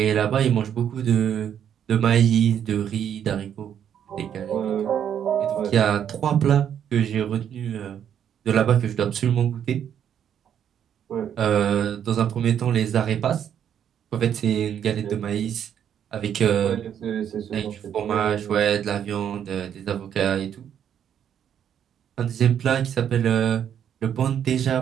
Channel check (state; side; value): quieter; left; 9.1 dB